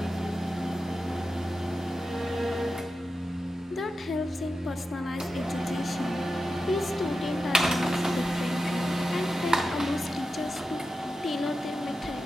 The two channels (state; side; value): normal; both; correlation 0.91